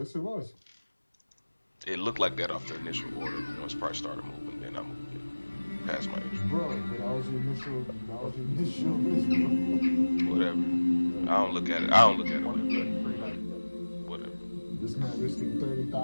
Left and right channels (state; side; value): inverted; both; correlation -1.00